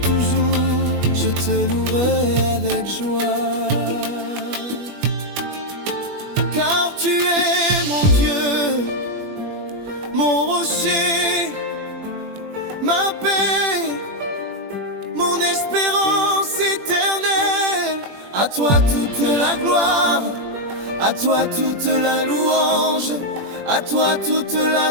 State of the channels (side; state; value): left; late; 21 ms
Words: je te louerai avec joie. Car tu es mon Dieu, mon rocher, ma paix, mon espérance éternelle. À toi toute la gloire, à toi toute la louange, à toi toute